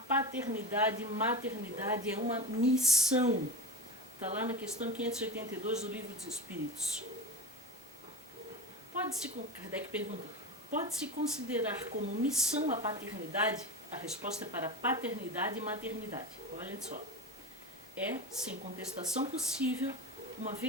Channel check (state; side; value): normal; both; correlation 0.23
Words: e maternidade é uma missão. Está lá na questão 582 do Livro dos Espíritos. Kardec pergunta, pode-se considerar como missão a paternidade? A resposta é para paternidade e maternidade. Olhem só. É, sem contestação possível, uma